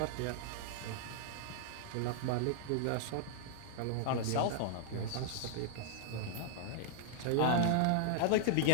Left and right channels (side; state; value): both; different; correlation -0.01